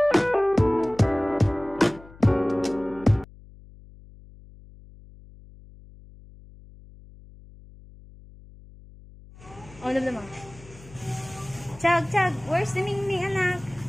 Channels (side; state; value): left; noise; hum, 21 dB below the sound